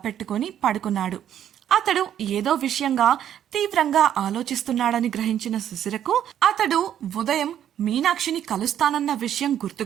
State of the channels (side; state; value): left; quieter; 10.3 dB